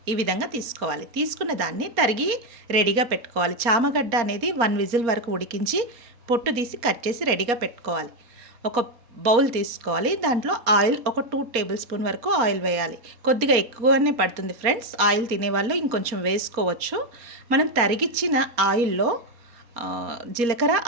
ఈ విధంగా తీసుకోవాలి. తీసుకున్న దాన్ని తరిగి రెడీగా పెట్టుకోవాలి. చామగడ్డ అనేది 1 విజిల్ వరకు ఉడికించి పొట్టు తీసి కట్ చేసి రెడీగా పెట్టుకోవాలి. ఒక బౌల్ తీసుకోవాలి. దాంట్లో ఆయిల్ ఒక 2 టేబుల్ స్పూన్ వరకు ఆయిల్ వేయాలి. కొద్దిగా ఎక్కువనే పడుతుంది ఫ్రెండ్స్. ఆయిల్ తినేవాళ్ళు ఇంకొంచెం వేసుకోవచ్చు. మనం తరిగిచ్చిన ఆయిల్లో జీలకర్ర,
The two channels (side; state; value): left; late; 4.2 ms